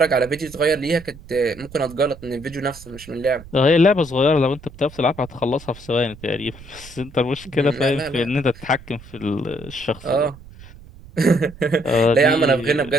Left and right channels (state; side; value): noise; right; rumble, 19 dB below the sound